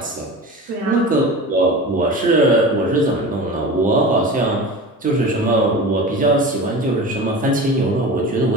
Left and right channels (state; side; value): normal; both; correlation 0.32